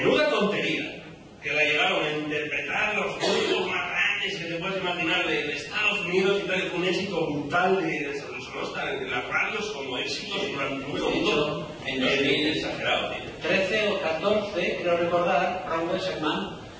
tontería, que la llegaron a interpretar los grupos más grandes que te puedes imaginar de Estados Unidos y tal, y con un éxito brutal de en las radios como éxitos durante un segundo en 2000, exagerado, tío. 13 o 14, creo recordar, Ron Weisman,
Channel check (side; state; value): both; identical; correlation 1.00